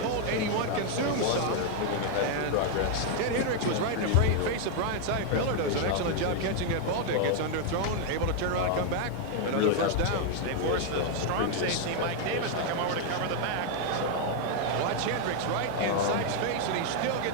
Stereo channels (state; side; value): different; both; correlation 0.00